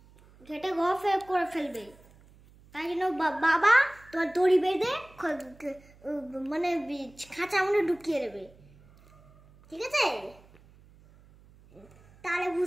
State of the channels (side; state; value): right; noise; hum, 26 dB below the sound